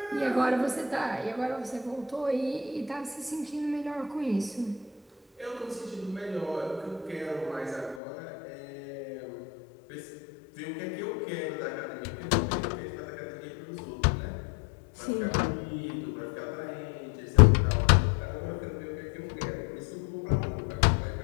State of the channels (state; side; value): drops out; right; at 8.0 s